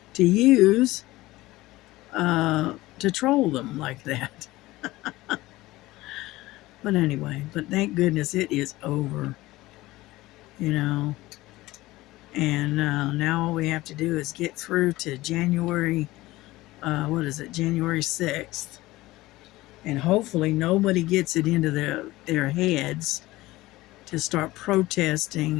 to use to troll them like that. But anyway, but thank goodness it is over. You know, and now all we have to do is get through to January. What is it? January 6th. And hopefully nobody gets it into their heads to start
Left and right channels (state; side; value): quieter; right; 18.4 dB